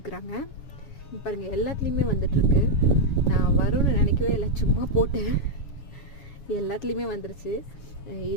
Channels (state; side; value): late; right; 7.2 ms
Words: பாருங்கள், எல்லாத்துலேயுமே வந்துட்டுருக்கு. நான் வரும்னு நினைக்கவே இல்லை, சும்மா போட்டேன், எல்லாத்துலேயுமே வந்துருச்சு.